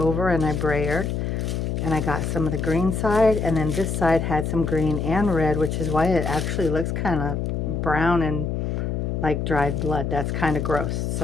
and I brayered. And I got some of the green side, and then this side had some green and red, which is why it actually looks kind of brown and like dried blood. That's kind of gross.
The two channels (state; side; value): noise; left; hum, 1 dB below the sound